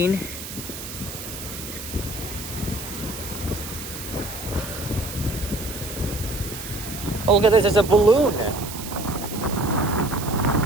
Oh, look at this, there's a balloon.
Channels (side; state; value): right; noise; hiss, 10 dB below the sound